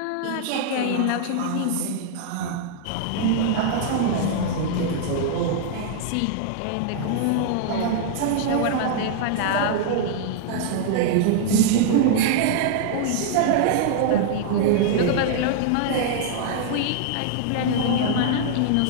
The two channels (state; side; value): different; both; correlation -0.01